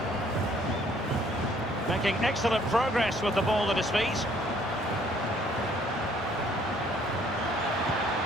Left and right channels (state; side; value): normal; both; correlation 0.62